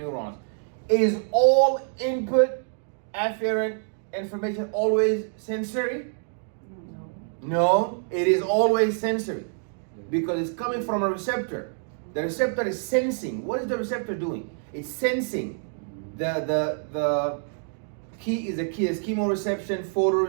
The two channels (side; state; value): left; silent; digital silence